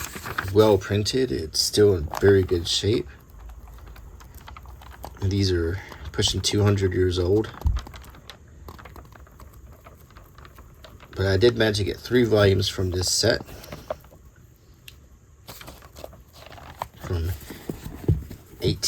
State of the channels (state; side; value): identical; both; correlation 1.00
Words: Well printed. It's still in very good shape. These are pushing 200 years old. But I did manage to get 3 volumes from this set. From